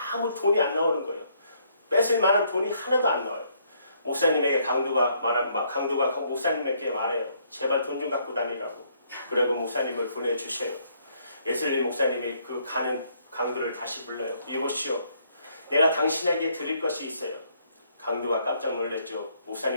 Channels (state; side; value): inverted; both; correlation -0.69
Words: 아무 돈이 안 나오는 거예요. 뺏을 만한 돈이 하나도 안 나와요. 목사님에게 강도가 목사님에게 말해요. 제발 돈 좀 갖고 다니라고. 그리고 목사님을 보내주셔요. 예슬리 목사님이 그 가는 강도를 다시 불러요. 이보시오, 내가 당신에게 드릴 것이 있어요. 강도가 깜짝 놀랐죠.